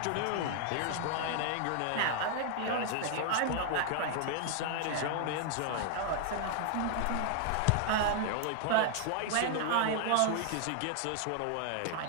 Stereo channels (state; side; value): different; both; correlation 0.00